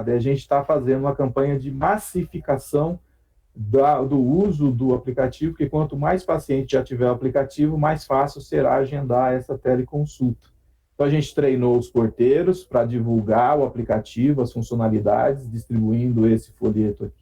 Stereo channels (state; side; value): identical; both; correlation 1.00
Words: E a gente está fazendo uma campanha de massificação do uso do aplicativo, porque quanto mais paciente já tiver o aplicativo, mais fácil será agendar essa teleconsulta. Então, a gente treinou os porteiros para divulgar o aplicativo, as funcionalidades, distribuindo esse folheto